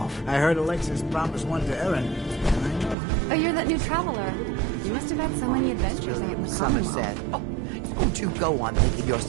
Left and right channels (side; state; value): left; drops out; at 3.0 s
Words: I heard Alexis promised one to Erin. Oh, you're that new traveler. You must have had so many adventures out in the Somerset. Oh, don't you go on thinking you're